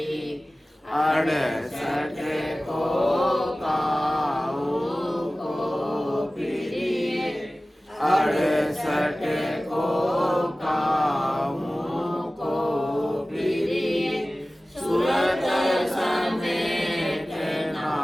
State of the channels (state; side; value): normal; both; correlation 0.97